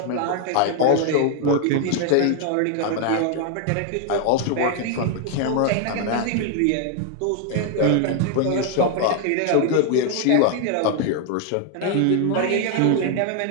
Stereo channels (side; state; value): both; different; correlation 0.00